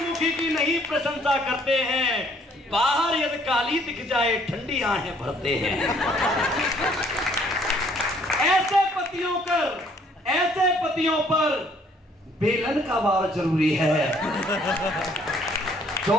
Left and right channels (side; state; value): both; normal; correlation 0.62